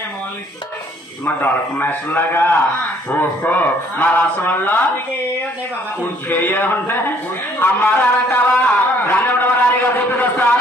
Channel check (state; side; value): normal; both; correlation 0.62